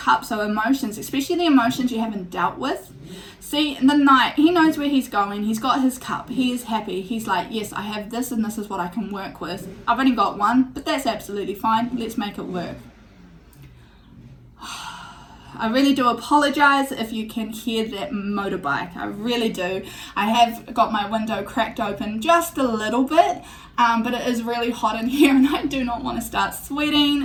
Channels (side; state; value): both; identical; correlation 1.00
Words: are emotions, especially the emotions you haven't dealt with. See, the Knight, he knows where he's going. He's got his cup. He is happy. He's like, yes, I have this and this is what I can work with. I've only got one, but that's absolutely fine. Let's make it work. I really do apologize if you can hear that motorbike. I really do. I have got my window cracked open just a little bit, but it is really hot in here and I do not want to start